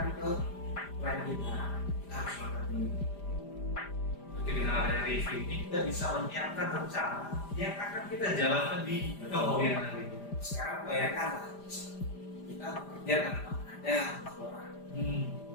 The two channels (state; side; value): late; right; 5.0 ms